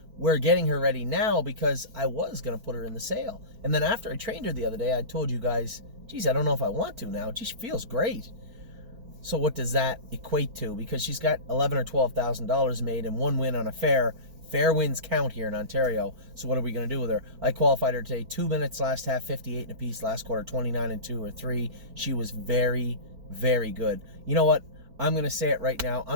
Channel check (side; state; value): left; late; 4.5 ms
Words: we're getting her ready now because I was going to put her in the sale. And then after I trained her the other day, I told you guys, geez, I don't know if I want to now. She feels great. So what does that equate to? Because she's got $11,000 or $12,000 made and 1 win on a fair. Fair wins count here in Ontario. So what are we going to do with her? I qualified her today. 2 minutes last half, 58 and a piece. Last quarter, 29 and 2 or 3. She was very, very good. You know what? I'm going to say it right now.